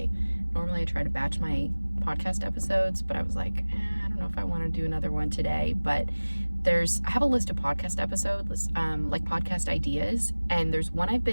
Normally I try to batch my podcast episodes, but I was like, I don't know if I want to do another one today, but I have a list of podcast episodes, like podcast ideas, and there's one I've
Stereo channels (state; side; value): inverted; both; correlation -1.00